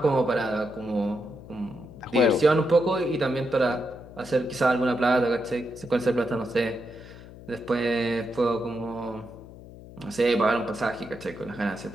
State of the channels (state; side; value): noise; left; hum, 17 dB below the sound